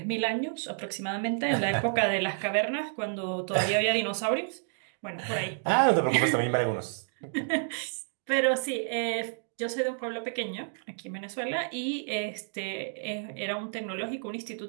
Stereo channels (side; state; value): left; silent; digital silence